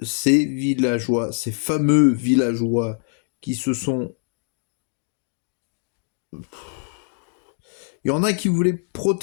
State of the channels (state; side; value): silent; right; 63 dB below the other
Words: ces villageois, ces fameux villageois qui se sont... Il y en a qui voulaient